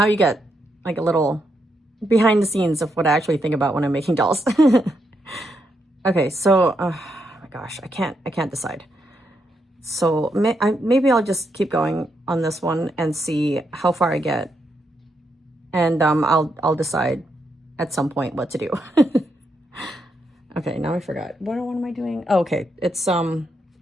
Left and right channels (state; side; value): normal; both; correlation 0.81